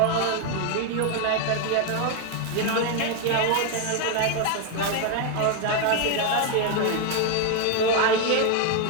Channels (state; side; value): different; both; correlation 0.01